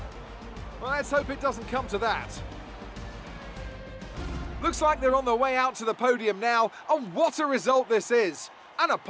Well, let's hope it doesn't come to that. Looks like they're on their way out to the podium now, and what a result this is! And a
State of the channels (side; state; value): both; identical; correlation 1.00